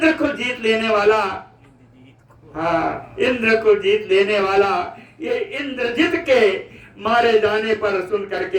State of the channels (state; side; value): identical; both; correlation 1.00